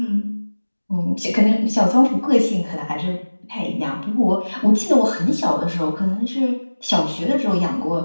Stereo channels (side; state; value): both; inverted; correlation -1.00